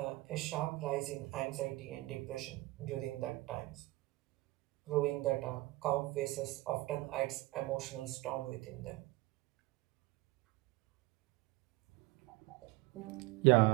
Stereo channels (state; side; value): quieter; left; 20.7 dB